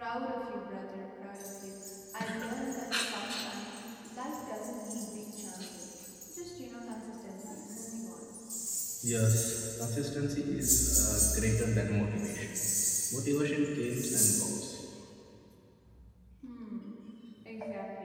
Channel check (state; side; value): identical; both; correlation 1.00